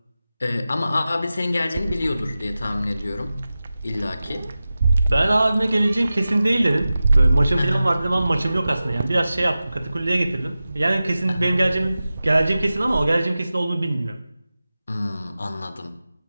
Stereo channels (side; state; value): both; inverted; correlation -0.94